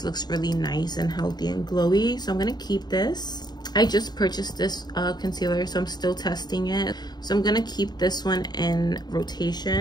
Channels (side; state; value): right; late; 0.20 ms